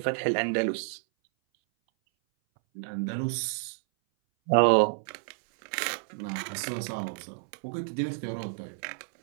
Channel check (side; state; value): left; silent; 58 dB below the other